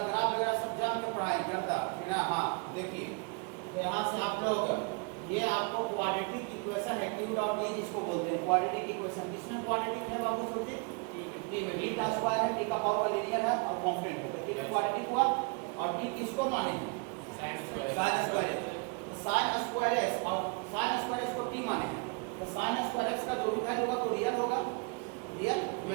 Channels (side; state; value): left; quieter; 32.2 dB